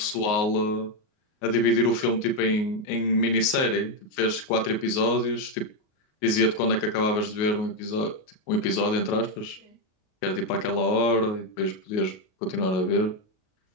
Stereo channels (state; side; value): late; right; 38 ms